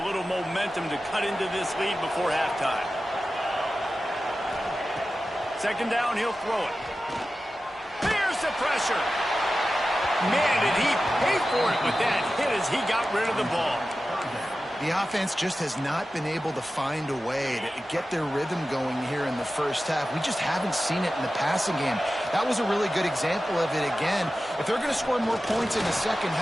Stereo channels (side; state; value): both; normal; correlation 0.94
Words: little momentum to cut into this lead before halftime. 2nd down, he'll throw it. Here's the pressure. Man, did he pay for it with that hit as he got rid of the ball. The offense just has not been able to find a way to get their rhythm going here in the first half. We just haven't seen it in the passing game. That was a really good example of it again. If they're going to score more points in the second